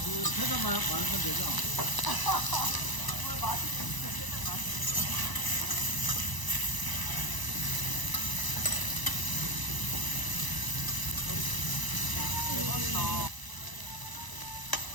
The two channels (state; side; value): late; right; 1.0 ms